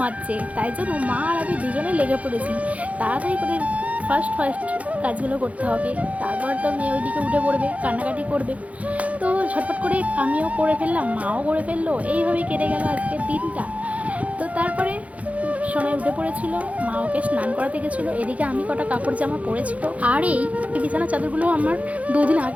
তাই জন্য মা আর আমি দুজনে লেগে পড়েছি তাড়াতাড়ি করে। ফার্স্ট কাজগুলো করতে হবে, তারপর তো মেয়ে ওইদিকে উঠে পড়বে, কান্নাকাটি করবে। তো ঝটপট করে আমিও করে ফেললাম, মাও করে ফেললো, এইভাবেই কেটে গেল আজকের দিনটা। তো তারপরে সোনাই উঠে পড়েছিল, মা ওকে স্নান করাতে গেছিলো, এদিকে আমি কটা কাপড় জামা পরেছিল। আর এই বিছানা চাদরগুলো আমার 2 দিন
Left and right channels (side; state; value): left; late; 0.067 ms